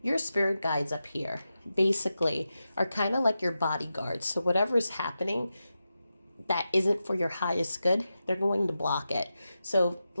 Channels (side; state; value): both; inverted; correlation -0.91